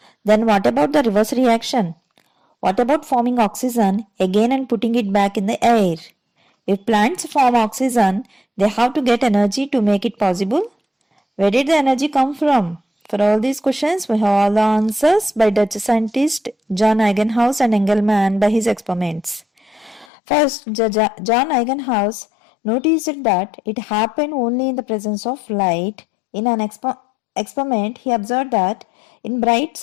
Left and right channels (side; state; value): right; drops out; at 20.1 s